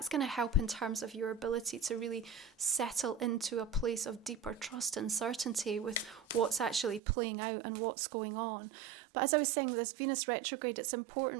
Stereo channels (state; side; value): drops out; left; at 7.0 s